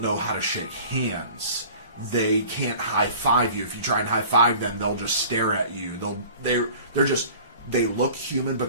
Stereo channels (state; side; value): inverted; both; correlation -0.44